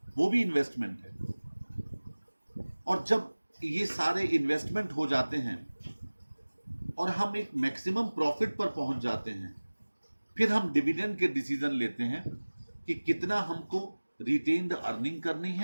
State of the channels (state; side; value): inverted; both; correlation -1.00